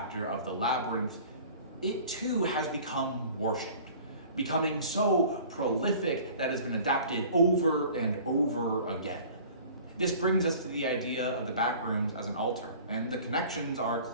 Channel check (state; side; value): inverted; both; correlation -0.46